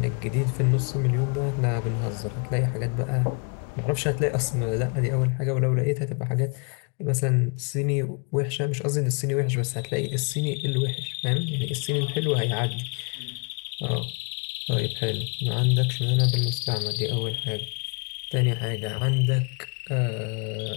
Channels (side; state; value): right; quieter; 36.1 dB